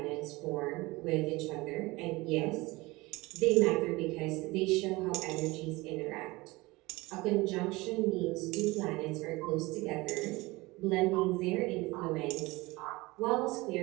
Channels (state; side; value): quieter; left; 21.9 dB